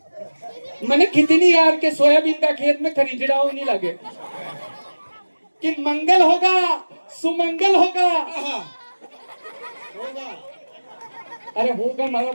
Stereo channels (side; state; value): both; inverted; correlation -1.00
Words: मैंने कितनी यार के सोयाबीन का खेत में खरीदड़ा नहीं लगे कि मंगल होगा सुमंगल होगा अरे होगा हमारा